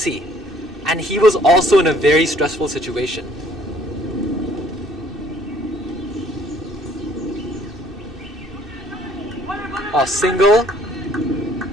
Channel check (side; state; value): both; normal; correlation 0.60